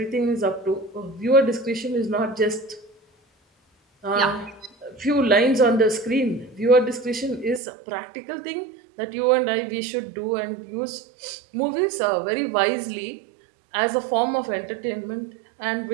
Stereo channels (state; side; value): drops out; left; at 7.6 s